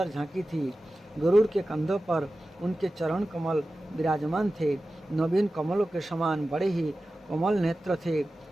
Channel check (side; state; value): both; normal; correlation 0.95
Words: झांकी थी। गरुड़ के कंधों पर उनके चरण कमल विराजमान थे। नवीन कमलों के समान बड़े ही कोमल नेत्र थे।